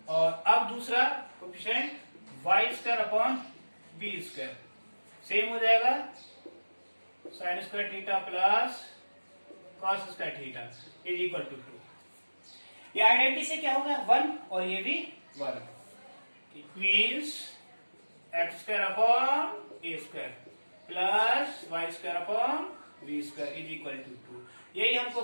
और अब दूसरा coefficient Y square upon B square same हो जाएगा, sine square theta plus cos square theta is equal to 2। ये आइडेंटिटी से क्या होगा 1 और ये भी 1। It means X square upon A square plus Y square upon B square is equal to 2। यही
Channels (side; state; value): both; inverted; correlation -1.00